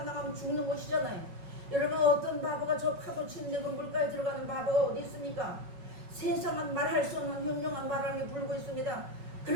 나가면 죽는 것이잖아요. 여러분 어떤 바보가 저 파도 치는데 그 물가에 들어가는 바보가 어디 있습니까? 세상은 말할 수 없는 흉흉한 바람이 불고 있습니다.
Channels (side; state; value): left; late; 5.4 ms